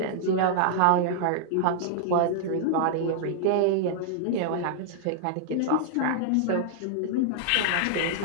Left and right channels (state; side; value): different; both; correlation -0.01